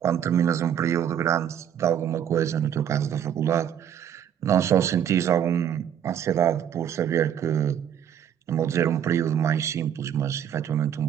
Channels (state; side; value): quieter; left; 9.3 dB